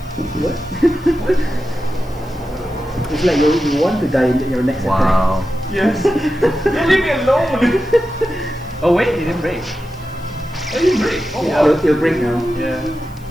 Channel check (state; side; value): noise; left; hiss, 28 dB below the sound